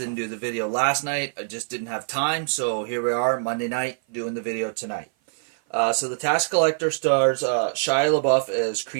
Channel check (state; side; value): silent; left; 56 dB below the other